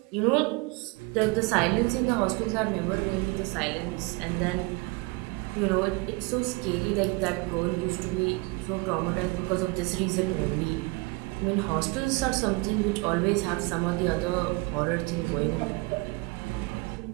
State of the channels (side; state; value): left; quieter; 25.4 dB